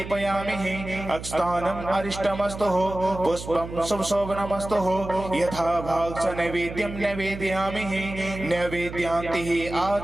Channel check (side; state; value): right; noise; hum, 10 dB below the sound